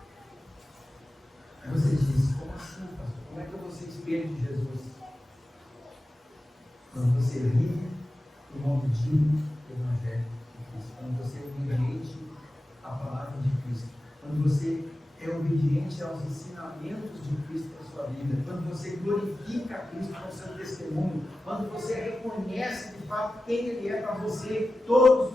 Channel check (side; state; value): both; normal; correlation 0.94